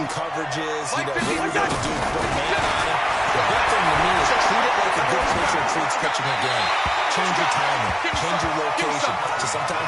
coverages, you know, what are we going to do, put a man on him. The big thing to me is treat it like a good pitcher treats pitching a game. Change your timing, change your location. So sometimes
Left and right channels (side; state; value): both; identical; correlation 1.00